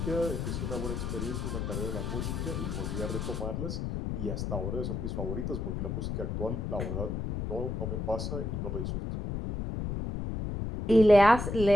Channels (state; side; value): noise; left; rumble, 3 dB below the sound